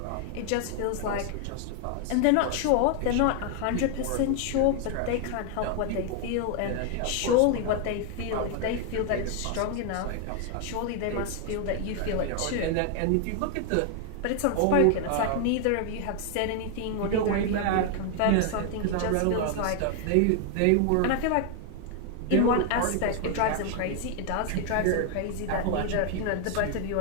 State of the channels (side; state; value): both; different; correlation 0.00